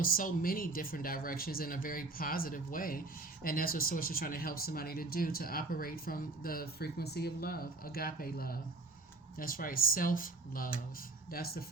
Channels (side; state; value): left; quieter; 3.3 dB